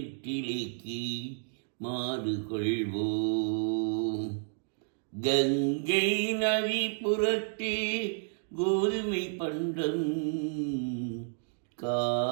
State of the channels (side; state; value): left; silent; digital silence